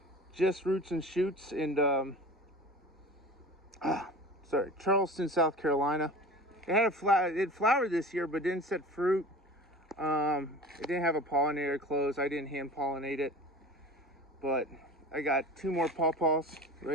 Just Roots and Shoots in Charleston, South Carolina. It had it flowered this year, but didn't set fruit. It didn't have a pollinator close. I didn't hand pollinate it, but I got 2 more pawpaws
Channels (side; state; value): both; normal; correlation 0.38